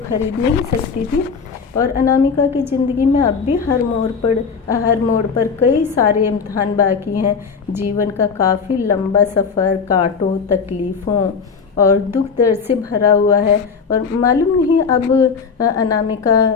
खरीद नहीं सकती थी। और अनामिका की ज़िंदगी में अब भी हर मोड़ पर कई सारे इम्तहान बाकी हैं। जीवन का काफ़ी लंबा सफ़र कांटों, तकलीफ़ों और दुख दर्द से भरा हुआ है। और मालूम नहीं अब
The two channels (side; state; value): right; quieter; 5.6 dB